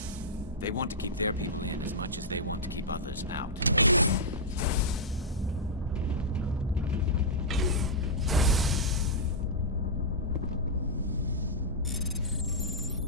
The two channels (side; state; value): both; normal; correlation -0.10